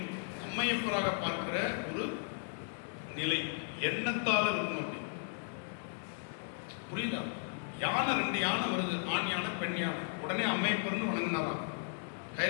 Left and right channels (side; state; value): right; silent; digital silence